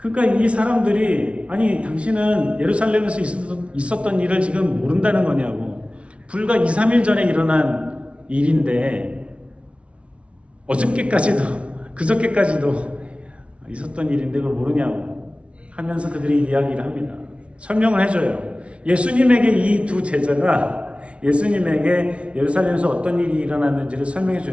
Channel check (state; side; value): late; left; 0.061 ms